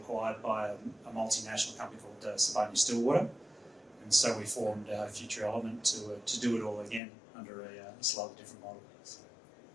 by a multinational company called Stillwater, and so we formed Future Element to do it all again under a slightly different model. So.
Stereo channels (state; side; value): drops out; right; at 7.0 s